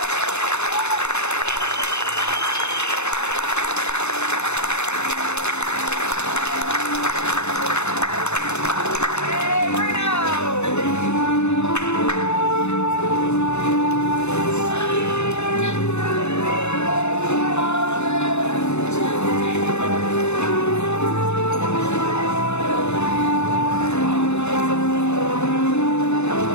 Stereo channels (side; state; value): right; late; 0.81 ms